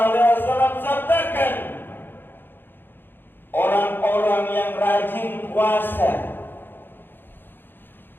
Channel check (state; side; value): late; right; 0.098 ms